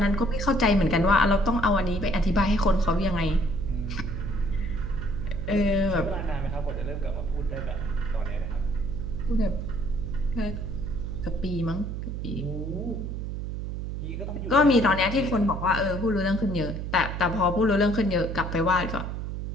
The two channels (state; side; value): noise; right; hum, 5 dB below the sound